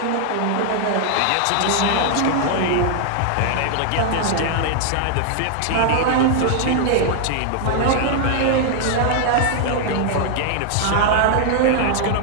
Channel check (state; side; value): different; both; correlation 0.00